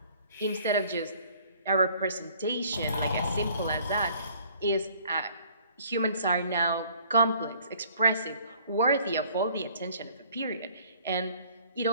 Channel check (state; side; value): inverted; both; correlation -0.57